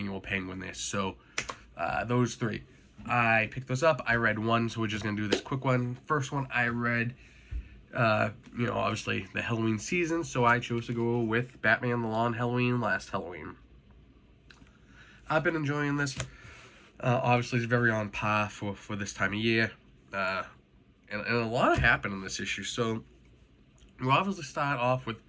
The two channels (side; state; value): both; identical; correlation 1.00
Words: Penguin there. So, those 3. I picked those up. I read one, so we're just going to do this quick one. First one I read, obviously the Halloween season, so I chose to go with Batman, The Law on Halloween, Last Halloween. I've been enjoying this. Obviously, it's very on par for this time of year. And a lot happened in this issue. So, we'll obviously start off with